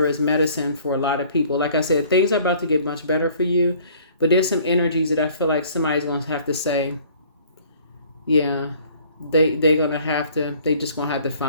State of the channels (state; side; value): inverted; both; correlation -0.55